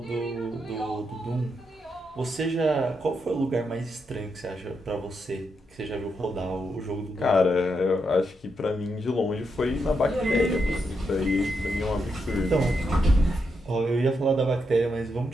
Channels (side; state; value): both; normal; correlation 0.82